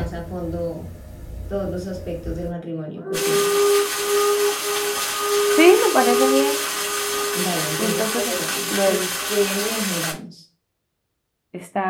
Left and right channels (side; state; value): both; identical; correlation 1.00